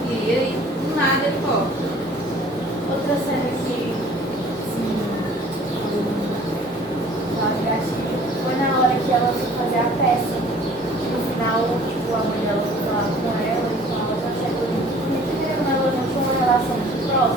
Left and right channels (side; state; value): both; normal; correlation 0.51